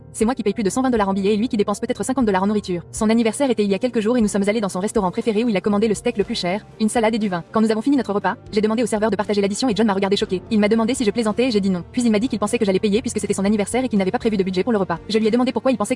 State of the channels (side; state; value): both; identical; correlation 1.00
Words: c'est moi qui paye plus de 120 $ en billets et lui qui dépense peut-être 50 $ en nourriture. Son anniversaire était il y a quelques jours et nous sommes allés dans son restaurant préféré où il a commandé le steak le plus cher, une salade et du vin. Quand nous avons fini notre repas, j'ai demandé au serveur de partager l'addition et John m'a regardé choqué. Il m'a demandé si je plaisantais et j'ai dit non. Puis il m'a dit qu'il pensait que j'allais payer puisque c'était son anniversaire et qu'il n'avait pas prévu de budget pour le repas. Je lui ai demandé pourquoi il pensait